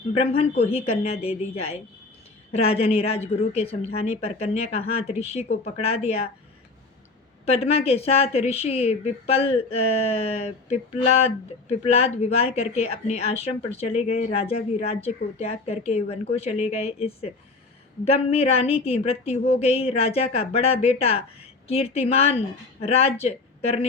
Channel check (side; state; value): right; quieter; 3.6 dB